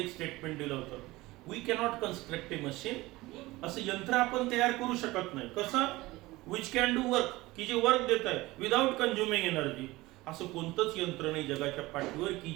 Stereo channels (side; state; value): left; quieter; 19.8 dB